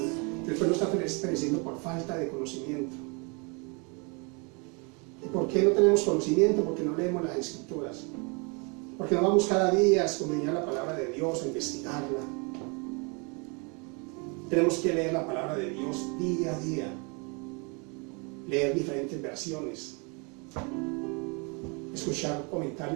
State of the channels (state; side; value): quieter; left; 32.5 dB